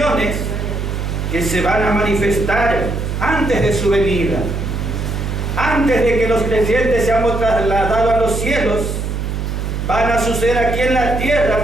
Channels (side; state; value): right; noise; hum, 3 dB below the sound